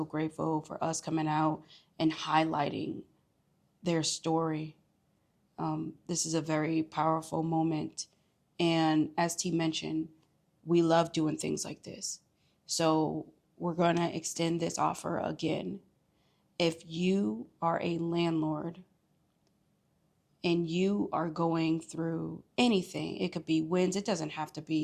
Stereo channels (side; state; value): both; identical; correlation 1.00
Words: grateful for us coming out and highlighting their story. This is a very powerful moment. And as T mentioned, we love doing things like this. So we're going to extend this offer again. If you are a landlord and you are going through anything, it could be wins, it doesn't have to